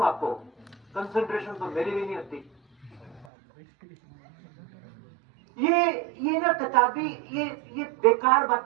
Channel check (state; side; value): drops out; left; at 3.2 s